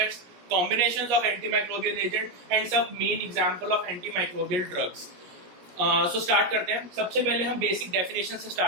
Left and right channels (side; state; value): left; late; 17 ms